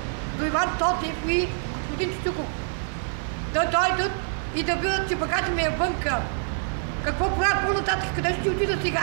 до Иван Тотев и господин Чичуков, да дойдат и да видят, че багата ми е вънка. Какво правят по-нататък, къде ще отида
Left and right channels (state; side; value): silent; left; digital silence